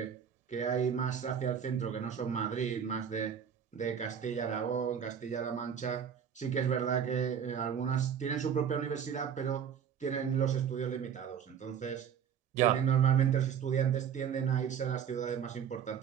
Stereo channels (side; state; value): left; quieter; 8.1 dB